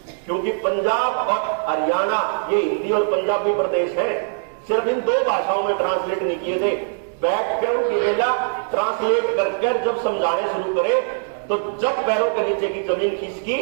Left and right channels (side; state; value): left; silent; digital silence